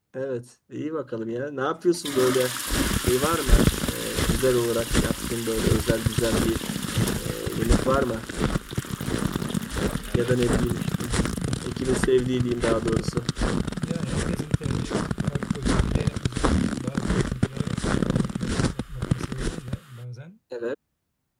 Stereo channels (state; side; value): identical; both; correlation 1.00